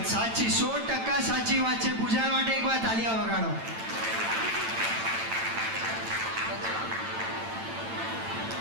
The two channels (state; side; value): late; left; 8.9 ms